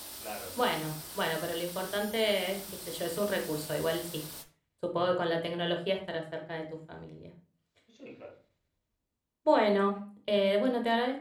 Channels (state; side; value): identical; both; correlation 1.00